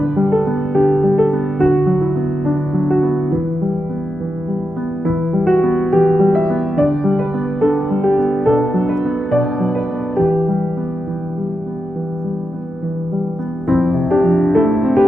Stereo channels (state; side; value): normal; both; correlation 0.88